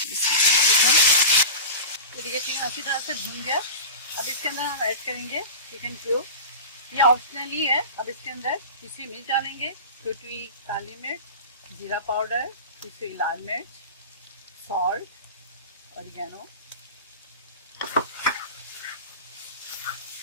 तो ये चिकन अच्छी तरह से भून गया। अब इसके अंदर हम ऐड करेंगे चिकन क्यूब। ये ऑप्शनली है। अब इसके अंदर पिसी मिर्च डालेंगे, छोटी काली मिर्च, जीरा पाउडर, पिसी लाल मिर्च, सॉल्ट, ऑरिगेनो।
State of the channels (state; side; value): inverted; both; correlation -0.31